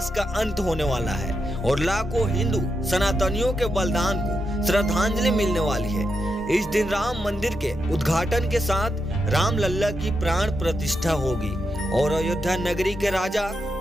का अंत होने वाला है और लाखों हिंदू सनातनियों के बलिदान को श्रद्धांजलि मिलने वाली है। इस दिन राम मंदिर के उद्घाटन के साथ राम लल्ला की प्राण प्रतिष्ठा होगी और अयोध्या नगरी के राजा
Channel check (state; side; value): normal; both; correlation 0.85